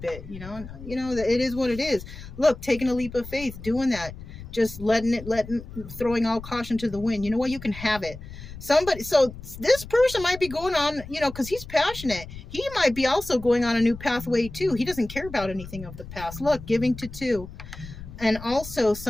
it. You know, it is what it is. Look, taking a leap of faith, doing that. Just throwing all caution to the wind. You know what? You can have it. So this person might be going on, you know, because he's passionate. He might be also going on a new pathway too. He doesn't care about anything of the past. Look, giving to two. And also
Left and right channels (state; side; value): noise; left; rumble, 13 dB below the sound